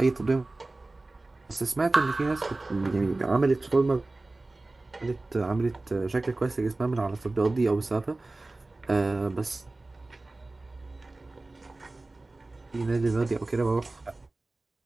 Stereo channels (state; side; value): quieter; left; 3.1 dB